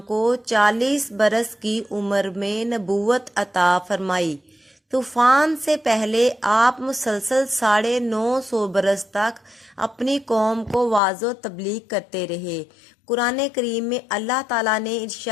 کو 40 برس کی عمر میں نبوت عطا فرمائی۔ طوفان سے پہلے آپ مسلسل 950 برس تک اپنی قوم کو واعظ و تبلیغ کرتے رہے۔ قرآن کریم میں اللہ تعالیٰ نے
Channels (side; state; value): right; drops out; at 11.0 s